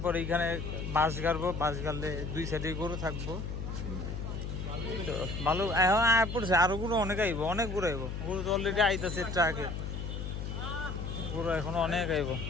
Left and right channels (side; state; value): left; noise; hum, 5 dB below the sound